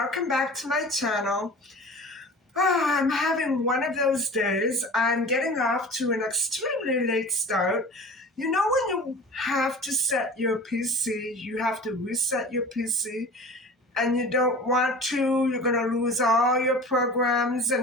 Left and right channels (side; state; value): both; normal; correlation 0.39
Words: back to my channel. I'm having one of those days. I'm getting off to an extremely late start. You know when you have to set your PC, you have to reset your PC, and you don't want to, you're going to lose all your programs